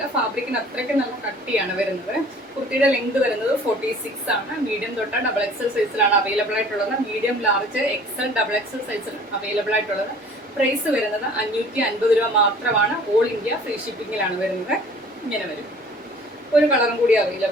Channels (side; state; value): both; normal; correlation 0.50